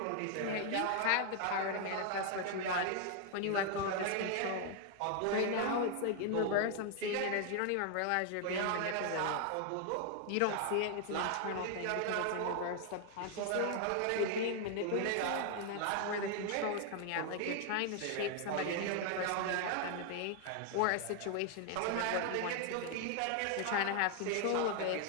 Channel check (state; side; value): different; both; correlation 0.00